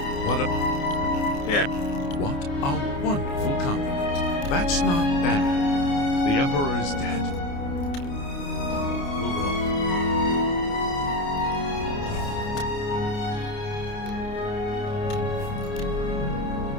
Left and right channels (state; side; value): late; right; 29 ms